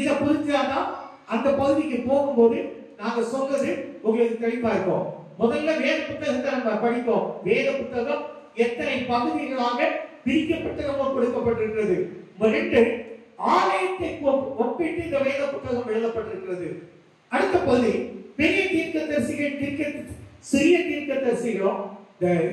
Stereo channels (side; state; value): both; identical; correlation 1.00